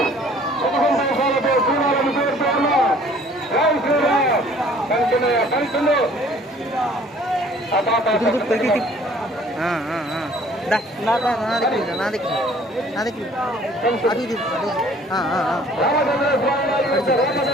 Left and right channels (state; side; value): normal; both; correlation 0.54